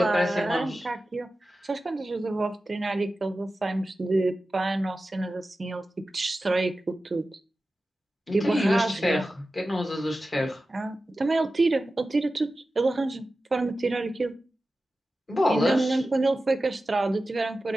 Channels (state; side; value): normal; both; correlation 0.94